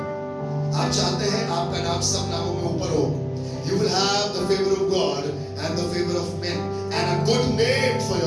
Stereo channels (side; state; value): both; identical; correlation 1.00